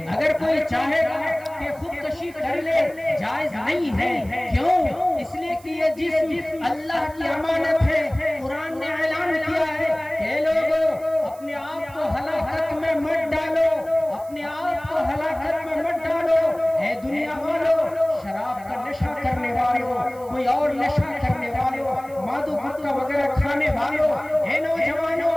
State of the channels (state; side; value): noise; right; hiss, 24 dB below the sound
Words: اگر کوئی چاہے گا کہ خودکشی کر لے جائز نہیں ہے۔ کیوں؟ اس لیے کہ یہ جسم اللہ کی امانت ہے۔ قرآن نے اعلان کیا ہے کہ لوگوں اپنے آپ کو ہلاکت میں مت ڈالو، اپنے آپ کو ہلاکت میں مت ڈالو۔ اے دنیا والوں، شراب کا نشہ کرنے والوں، کوئی اور نشہ کرنے والوں، مادو گٹکا وغیرہ کھانے والوں، اے